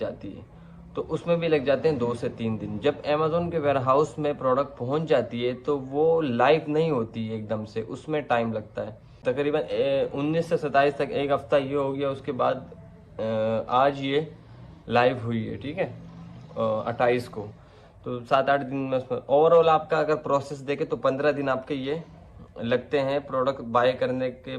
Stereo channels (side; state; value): both; identical; correlation 1.00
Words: है तो उसमें भी लग जाते हैं 2 से 3 दिन। जब अमेजोन के वेयर हाउस में प्रोडक्ट पहुंच जाती है तो वो लाइव नहीं होती है एकदम से, उसमें टाइम लगता है तकरीबन 19 से 27 तक, एक हफ्ता ये हो गया। उसके बाद आज ये लाइव हुई है, ठीक है, 28 को, तो 7-8 दिन में उसमें ओवरऑल आपका अगर प्रोसेस देखे तो 15 दिन आपके ये लगते हैं प्रोडक्ट बाय करने के